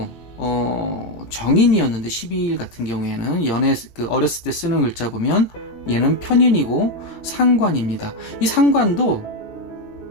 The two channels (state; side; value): late; right; 18 ms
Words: 정인이었는데 12일 같은 경우에는 어렸을 때 쓰는 글자 보면 얘는 편인이고 상관입니다. 이 상관도